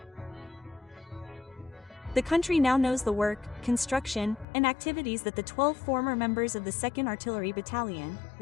The country now knows the work, construction, and activities that the 12 former members of the 2nd Artillery Battalion,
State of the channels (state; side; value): drops out; right; at 4.5 s